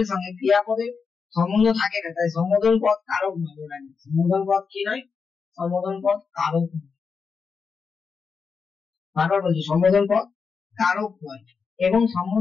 সঙ্গে ক্রিয়াপদের সম্বন্ধ থাকে না, তাই সম্বোধন পদ কারক নয়, মনে রাখবে। সম্বোধন পদ কি নয়? সম্বোধন পদ কারক নয়। বারবার বলছি, সম্বোধন পদ কারক নয়। এবং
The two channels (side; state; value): right; quieter; 5.4 dB